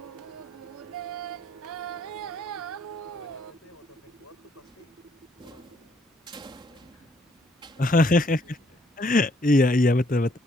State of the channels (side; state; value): both; normal; correlation 0.67